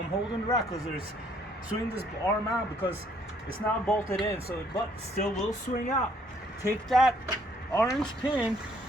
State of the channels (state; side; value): normal; both; correlation 0.65